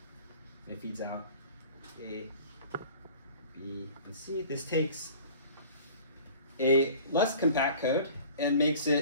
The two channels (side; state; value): both; inverted; correlation -0.45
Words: it feeds out A, B, and C. This takes a less compact code and makes